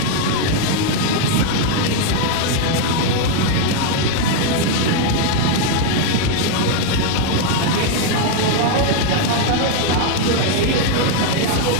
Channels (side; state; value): both; different; correlation 0.00